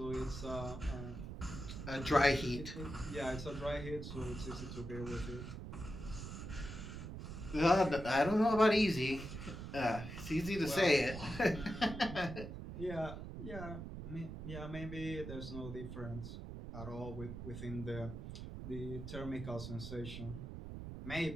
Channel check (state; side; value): noise; right; rumble, 8 dB below the sound